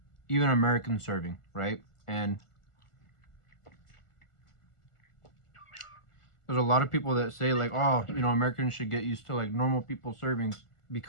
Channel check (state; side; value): late; right; 1.4 ms